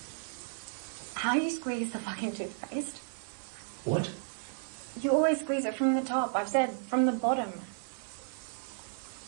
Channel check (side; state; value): left; silent; 56 dB below the other